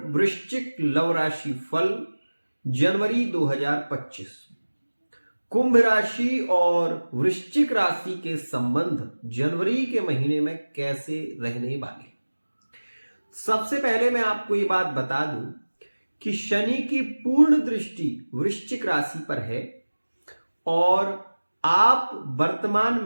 वृश्चिक लव राशि फल जनवरी 2025। कुंभ राशि और वृश्चिक राशि के संबंध जनवरी के महीने में कैसे रहने वाले। सबसे पहले मैं आपको ये बात बता दूं कि शनि की पूर्ण दृष्टि वृश्चिक राशि पर है और आप वर्तमान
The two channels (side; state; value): both; inverted; correlation -1.00